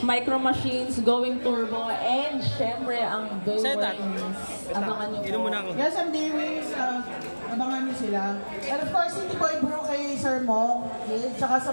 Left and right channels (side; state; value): both; inverted; correlation -1.00